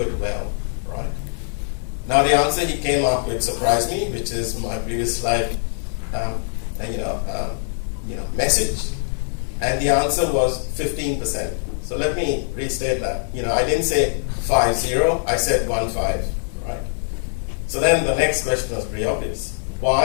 it well? Right. Now the answer he came up with surprised me, which is my previous slide, message, and the answer was 15%. So let me restate that. I didn't say 50, I said 15, right? So then the next question was pretty obvious.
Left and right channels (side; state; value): right; silent; digital silence